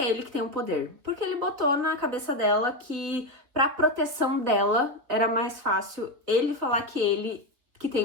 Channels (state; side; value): late; left; 3.7 ms